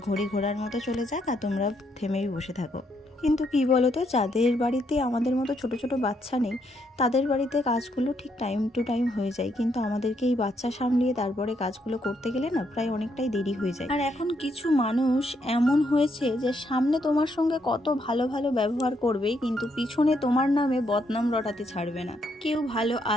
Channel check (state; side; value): normal; both; correlation 0.75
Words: ঘড়ি ঘোড়ার মতো চলে যাক, আর তোমরা থেমেই বসে থাকো। কিন্তু কি বলো তো, যাদের বাড়িতে আমাদের মতো ছোট ছোট বাচ্চা নেই, তাদের বাড়িতে কাজগুলো ঠিক টাইম টু টাইম হয়ে যায়, কিন্তু আমাদেরকে এই বাচ্চা সামলিয়ে তারপরে কাজগুলো করতে গেলে না প্রায় অনেকটাই দেরি হয়ে যায়। আর এখন কিছু মানুষ এমন হয়েছে যে সামনে তোমার সঙ্গে কত ভালো ভালো ব্যবহার করবে, কিন্তু পিছনে তোমার নামে বদনাম রটাতে ছাড়বে না। কেউ ভালো